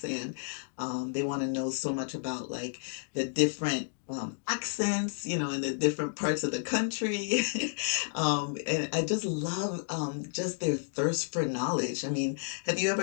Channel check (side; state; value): right; silent; digital silence